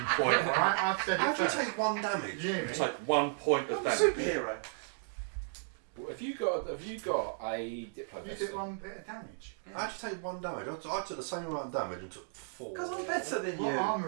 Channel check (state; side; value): silent; left; digital silence